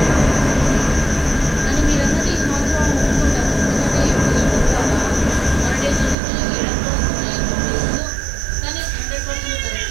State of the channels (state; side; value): drops out; left; at 6.2 s